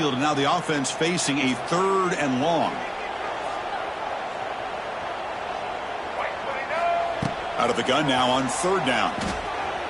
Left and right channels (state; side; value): identical; both; correlation 1.00